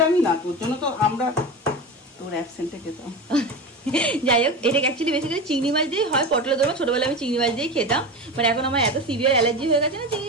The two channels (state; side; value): normal; both; correlation 0.25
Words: না, তোর জন্য তো আমরা তোর অ্যাবসেন্টে খেতাম। যাই হোক এটা অ্যাকচুয়ালি বেসিক্যালি চিংড়ি মাছ দিয়ে হয় পটলের দোরমা। ছোটবেলায় আমি চিংড়ি মাছ দিয়েই খেতাম, বাট এখন আমার এত সিভিয়ার অ্যালার্জি হয়ে গেছে না